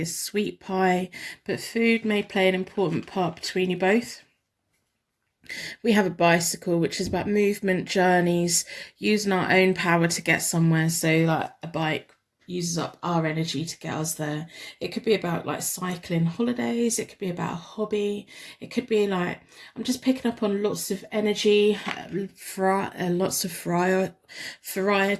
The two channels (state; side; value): identical; both; correlation 1.00